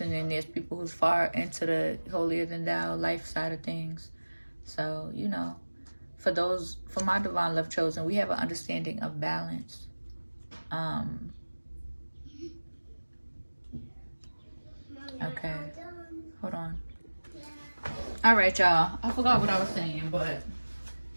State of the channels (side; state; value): both; inverted; correlation -1.00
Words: then there's people who's far into the holier than thou life side of things. So, you know, for my divine love chosen, we have an understanding of balance. Okay, hold on. All right, y'all, I forgot what I was saying, but